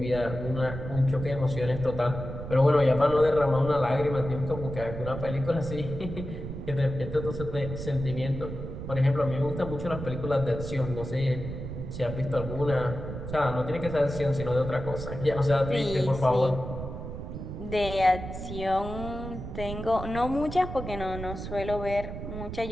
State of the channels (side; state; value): right; noise; rumble, 8 dB below the sound